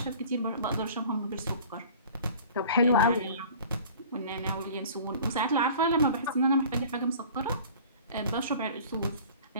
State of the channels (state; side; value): inverted; both; correlation -0.45